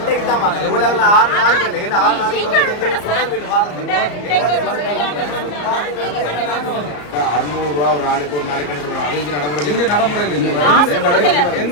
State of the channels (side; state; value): right; late; 34 ms